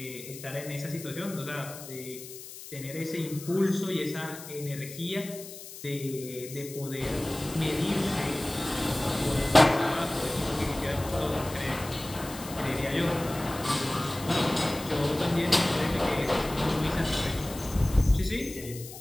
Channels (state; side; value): noise; left; hiss, 13 dB below the sound